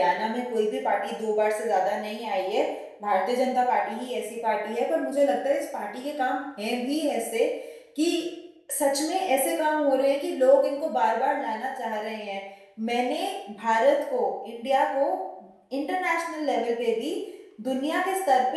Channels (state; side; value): identical; both; correlation 1.00